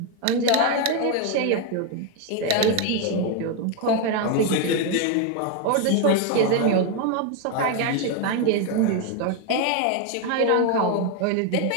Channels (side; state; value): both; different; correlation 0.01